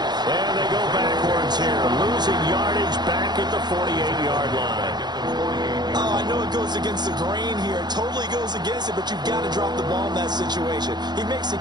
And they go backwards here, losing yardage back at the 48-yard line. Oh, I know it goes against the grain here. It totally goes against it, but you've got to drop the ball in that situation. He makes the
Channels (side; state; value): left; late; 0.21 ms